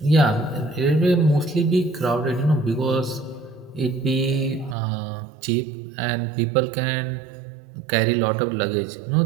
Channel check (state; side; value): drops out; left; at 4.8 s